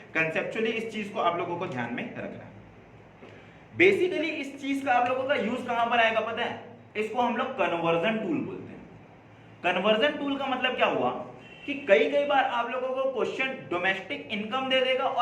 कंसेप्चुअली इस चीज को आप लोगों को ध्यान में रखना है। बेसिकली इस चीज का आप लोगों का यूज कहां पर आएगा पता है? इसको हम लोग कन्वर्जन टूल बोलते हैं। कन्वर्जन टूल का मतलब क्या हुआ कि कई बार आप लोगों को क्वेश्चन डोमेस्टिक इनकम दे देगा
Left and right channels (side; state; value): both; identical; correlation 1.00